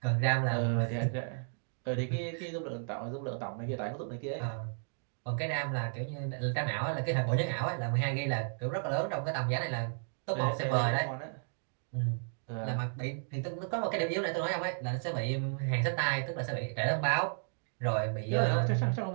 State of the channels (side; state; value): left; silent; digital silence